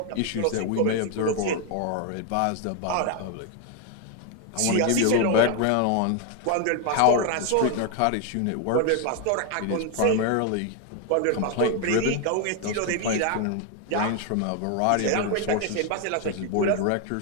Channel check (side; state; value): both; different; correlation 0.01